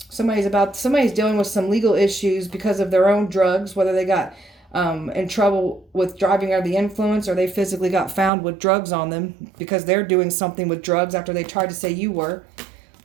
Somebody's dealing with some legal issues because of their own drugs, whether they got in trouble with driving under the influence or they physically got found with drugs on them because they're doing something with drugs after they tried to say you were.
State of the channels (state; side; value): drops out; left; at 8.3 s